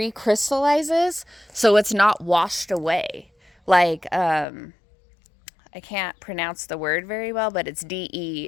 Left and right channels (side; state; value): right; drops out; at 4.5 s